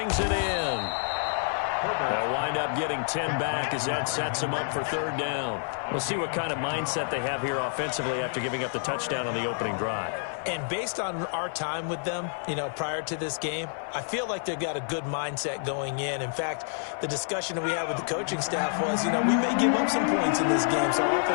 it in. They'll wind up getting 10 back as that sets them up for 3rd down. We'll see what kind of mindset they have here offensively after giving up the touchdown on the opening drive. And based on our time with them, prior to this game, I feel like they've got a good mindset going in. In fact, the discussion that we had with the coaching staff was, we may give up some points in this game, so our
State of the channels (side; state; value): right; silent; 59 dB below the other